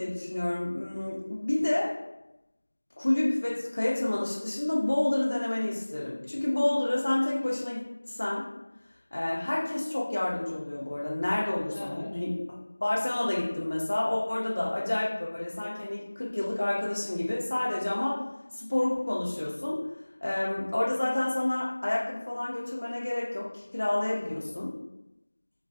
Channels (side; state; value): both; inverted; correlation -1.00